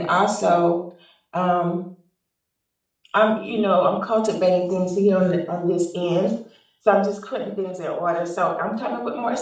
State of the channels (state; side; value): identical; both; correlation 1.00